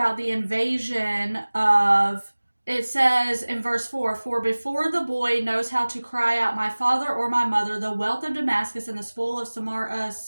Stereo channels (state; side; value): inverted; both; correlation -1.00